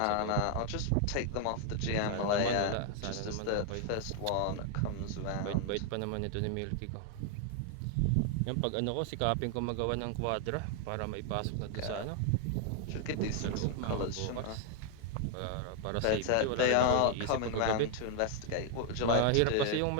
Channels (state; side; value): different; both; correlation 0.00